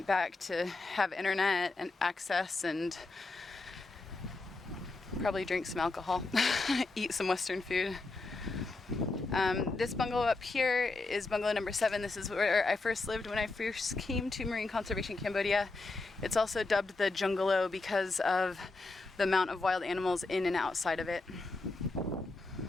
back to have internet and access and probably drink some alcohol, eat some Western food. This bungalow up here is bungalow number 7. This is where I first lived when I first came to Marine Conservation Cambodia. It's also dubbed the Bungalow because of the amount of wild animals in and outside of it.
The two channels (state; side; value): quieter; right; 3.4 dB